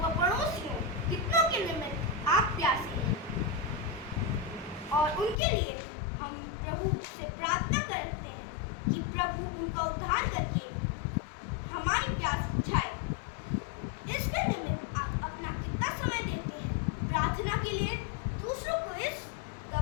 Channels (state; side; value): drops out; right; at 5.4 s